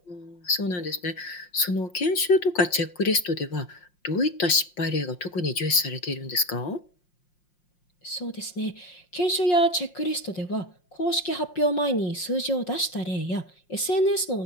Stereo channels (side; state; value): right; late; 5.6 ms